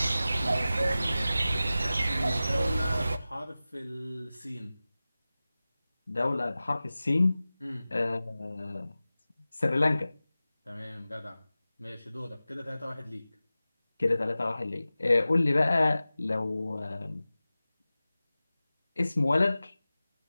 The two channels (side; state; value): both; inverted; correlation -0.96